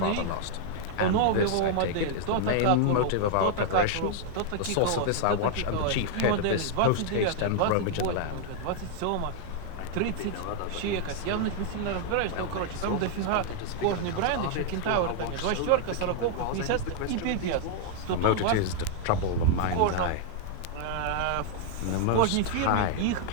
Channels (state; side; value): different; both; correlation 0.00